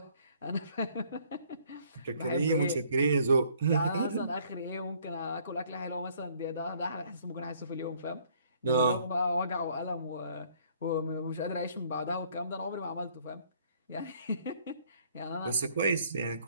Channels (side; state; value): both; inverted; correlation -0.62